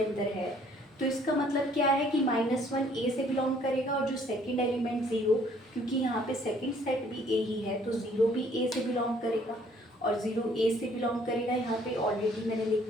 है तो इसका मतलब क्या है कि -1 ए से बिलोंग करेगा, और जो सेकंड एलिमेंट 0, क्योंकि यहाँ पे सेकंड सेट भी ए ही है तो 0 भी ए से बिलोंग करेगा, और 0 ए से बिलोंग करेगा, यहाँ पे ऑलरेडी मैंने लिख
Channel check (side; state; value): both; normal; correlation 0.61